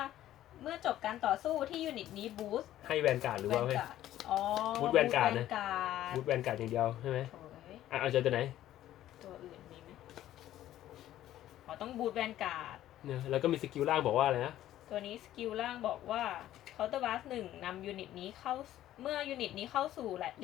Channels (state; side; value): quieter; right; 13.1 dB